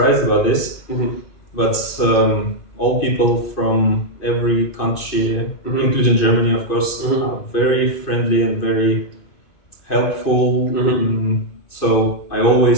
about this, but all people from every country, including Germany, of course, are very friendly and very helpful. So I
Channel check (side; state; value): right; late; 2.5 ms